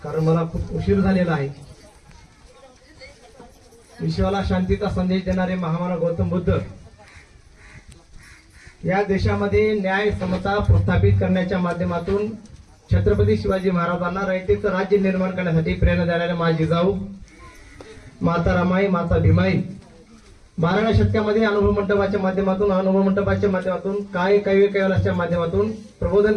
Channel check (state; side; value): identical; both; correlation 1.00